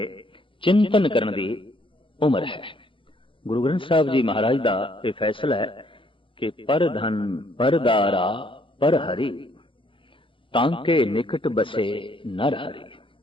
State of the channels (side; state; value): right; late; 0.25 ms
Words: चिंतन करन दी उम्र है। गुरु ग्रंथ साहिब जी महाराज दा ये फैसला है कि पर धन पर दारा पर हरि, तांके निकट बसे नर हरि।